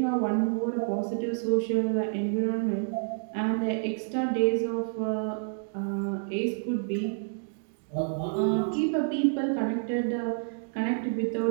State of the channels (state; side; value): silent; left; digital silence